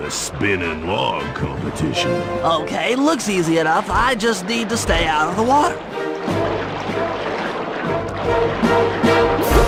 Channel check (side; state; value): both; identical; correlation 1.00